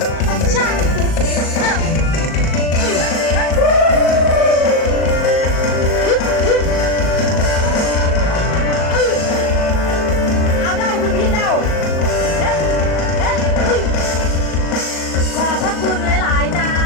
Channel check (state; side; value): late; right; 38 ms